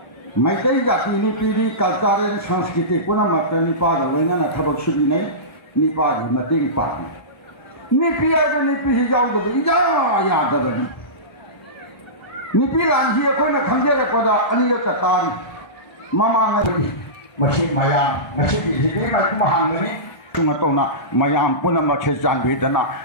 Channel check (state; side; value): late; right; 1.3 ms